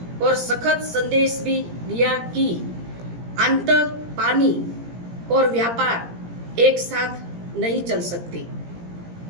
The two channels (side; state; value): left; late; 17 ms